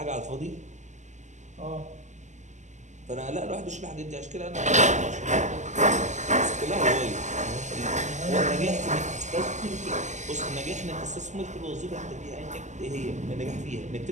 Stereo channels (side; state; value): left; late; 0.34 ms